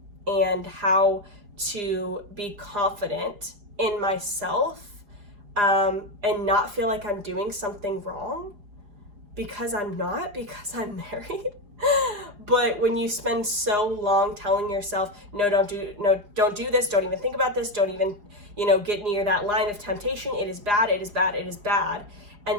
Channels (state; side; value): late; left; 4.8 ms